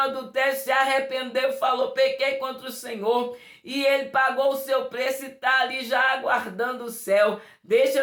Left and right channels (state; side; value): identical; both; correlation 1.00